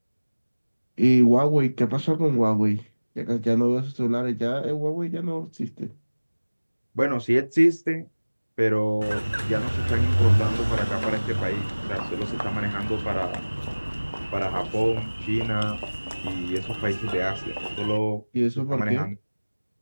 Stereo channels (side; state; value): both; inverted; correlation -1.00